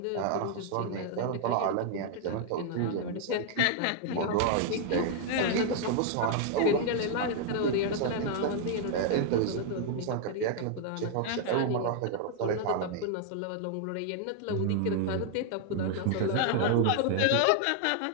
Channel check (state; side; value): different; both; correlation 0.00